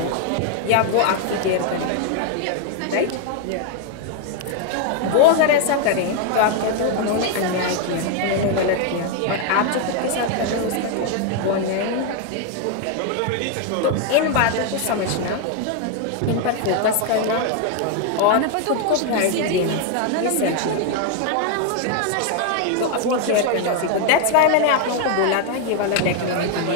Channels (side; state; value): both; different; correlation 0.01